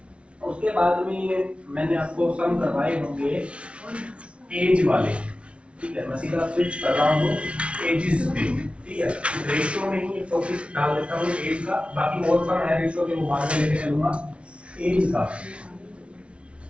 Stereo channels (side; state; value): left; late; 0.060 ms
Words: उसके बाद में मैंने आपको सम करवाए होंगे एज वाले, ठीक है। मैं सीधा स्विच कर रहा हूँ एजेस पे, ठीक है। रेशियो में ही एक टॉपिक डाल देता हूँ एज का, बाकी और सम है रेशियो के, वो बाद में लेके चलूंगा। एज का